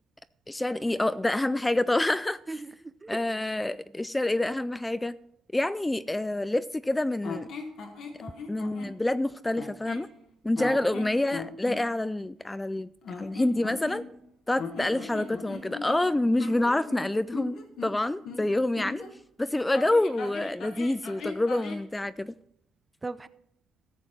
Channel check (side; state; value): both; normal; correlation 0.98